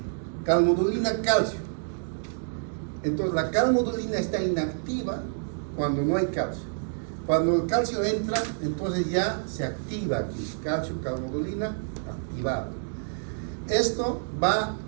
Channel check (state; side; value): silent; left; digital silence